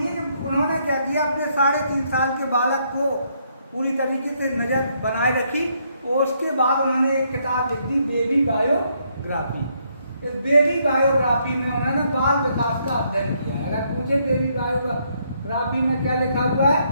कि उन्होंने क्या किया, अपने 3.5 साल के बालक को पूरी तरीके से नजर बनाए रखी और उसके बाद उन्होंने एक किताब लिख दी, बेबी बायोग्राफी। इस बेबी बायोग्राफी में उन्होंने बाल विकास का अध्ययन किया है। अगर पूछे बेबी बायोग्राफी में क्या लिखा हुआ है,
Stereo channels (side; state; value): both; inverted; correlation -0.73